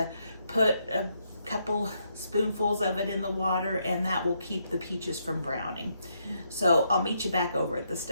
put a couple spoonfuls of it in the water, and that will keep the peaches from browning. So I'll meet you back over at the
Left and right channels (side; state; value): both; inverted; correlation -0.77